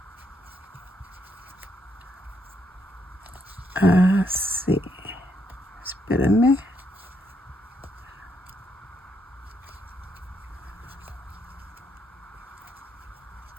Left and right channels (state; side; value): normal; both; correlation 0.76